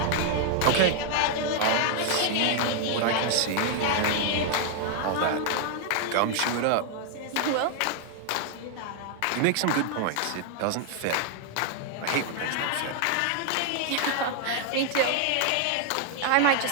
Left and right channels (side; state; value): both; different; correlation 0.00